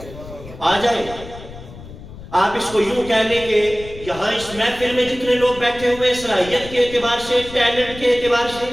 آ جائے۔ آپ اس کو یوں کہہ لیں کہ یہاں اس محفل میں جتنے لوگ بیٹھے ہوئے، صلاحیت کے اعتبار سے، ٹیلنٹ کے اعتبار سے،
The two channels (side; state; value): left; noise; rumble, 15 dB below the sound